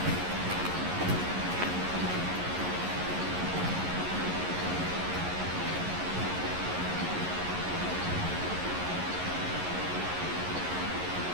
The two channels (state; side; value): late; left; 11 ms